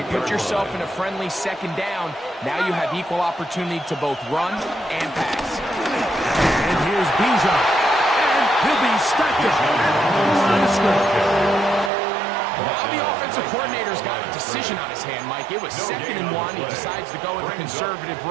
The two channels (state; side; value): drops out; left; at 11.9 s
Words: put yourself in a friendly second down. Now you have equal opportunity to both run and pass. And here's Bijan. And he'll be stacked up at the line of scrimmage. Now the offensive coordinator's got a decision on his hand, Mike. It was 2nd and 1. He decides to go with a conservative